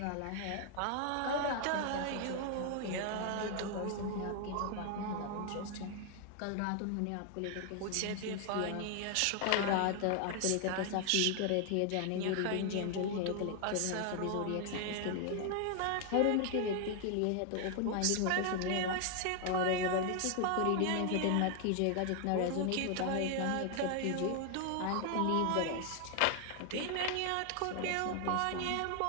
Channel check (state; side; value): different; both; correlation 0.00